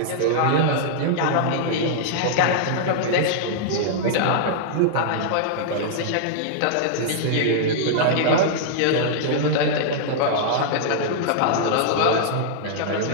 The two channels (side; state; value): both; different; correlation -0.02